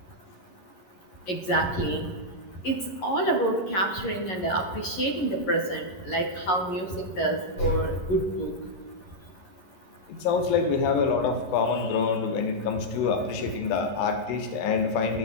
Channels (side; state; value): right; late; 11 ms